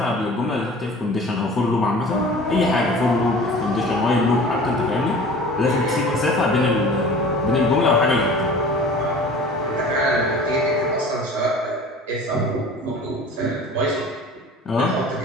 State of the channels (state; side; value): normal; both; correlation 0.42